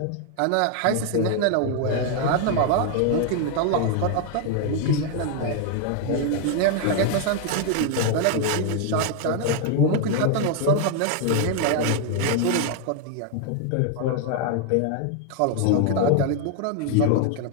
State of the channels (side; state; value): both; different; correlation 0.00